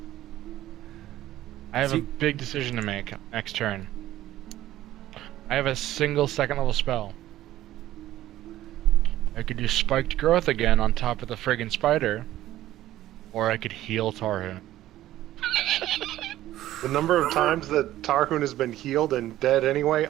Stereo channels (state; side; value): quieter; left; 14.2 dB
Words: I have See- a big decision to make next turn. I have a single second level spell. I could do spiked growth again on top of the friggin' spider, or I could heal Tarhoon. The number of times that Tarhoon has been healed and dead anyway,